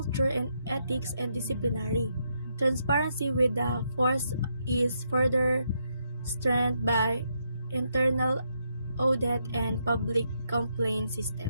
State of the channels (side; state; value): both; inverted; correlation -0.79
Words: and ethics and disciplinary. Transparency with the force is further strengthened by internal audit and public complaint